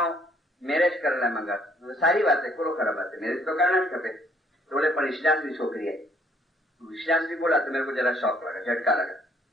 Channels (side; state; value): both; normal; correlation 0.64